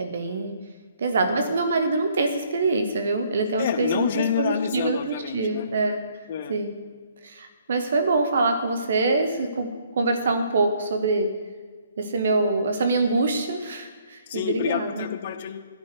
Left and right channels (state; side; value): inverted; both; correlation -0.64